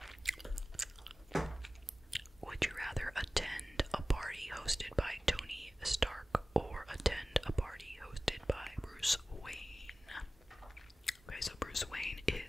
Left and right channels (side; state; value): both; normal; correlation 0.97